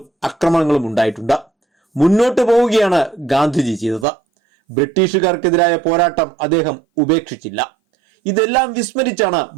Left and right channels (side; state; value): left; drops out; at 4.0 s